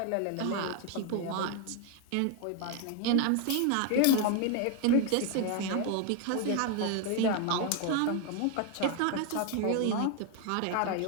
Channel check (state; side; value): different; both; correlation 0.01